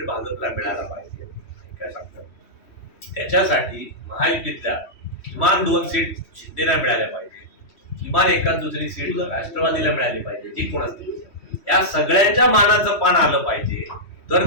भाजपला मिळायला पाहिजे. काय सांगतात त्याच्यासाठी महायुतीतल्या किमान 2 सीट शिंदेला मिळाल्या पाहिजे, किमान एखाद दुसरी सीट राष्ट्रवादीला मिळाली पाहिजे, जी कोण असतील या सगळ्यांच्या मानाचं पान आलं पाहिजे, तर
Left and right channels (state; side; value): late; right; 3.1 ms